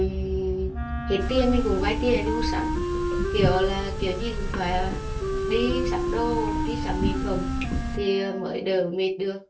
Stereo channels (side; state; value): both; identical; correlation 1.00